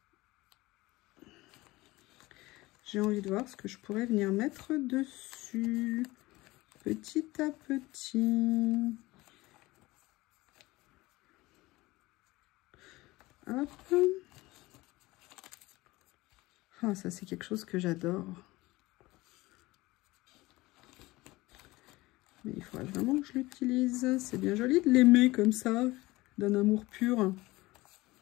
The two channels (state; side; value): quieter; right; 20.1 dB